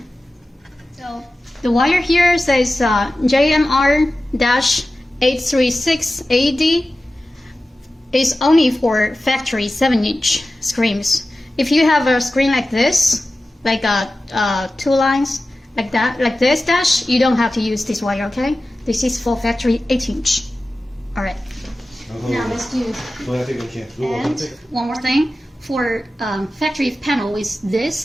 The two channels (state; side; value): normal; both; correlation 0.95